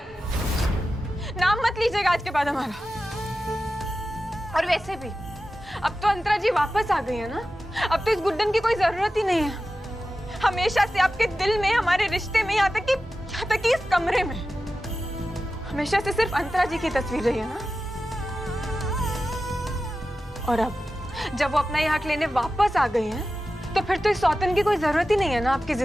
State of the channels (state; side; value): normal; both; correlation 0.93